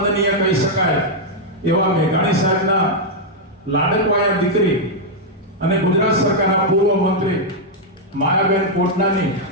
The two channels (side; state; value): both; normal; correlation -0.03